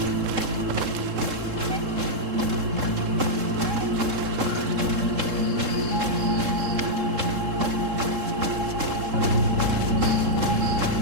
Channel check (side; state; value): left; late; 3.7 ms